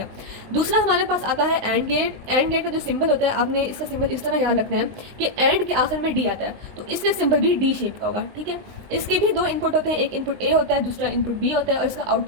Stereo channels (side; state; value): left; late; 20 ms